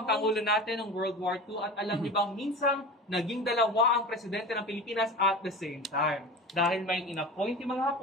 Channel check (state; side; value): normal; both; correlation 0.32